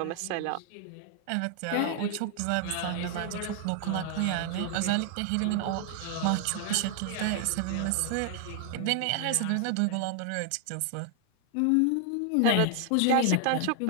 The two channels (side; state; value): both; different; correlation 0.00